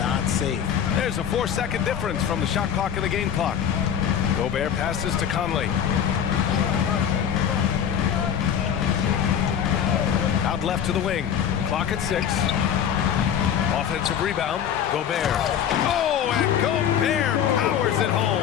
safe. There's a 4-second difference from the shot clock and the game clock. Gobert passes to Conley. Out left to the wing. Clock at 6. Offensive rebound. Gobert. Oh, and Gobert powers it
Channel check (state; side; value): quieter; right; 8.8 dB